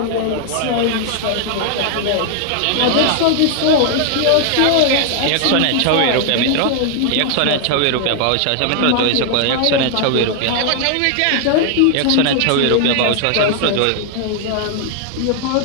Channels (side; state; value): both; different; correlation 0.00